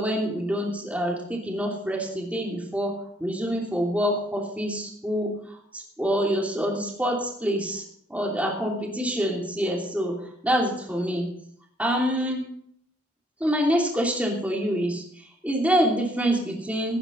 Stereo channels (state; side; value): normal; both; correlation 0.66